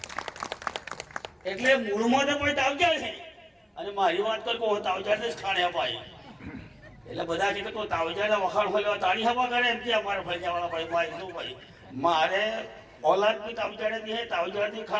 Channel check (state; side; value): identical; both; correlation 1.00